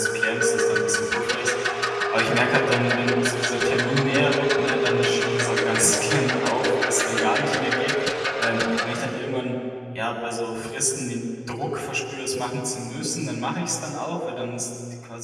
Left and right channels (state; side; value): identical; both; correlation 1.00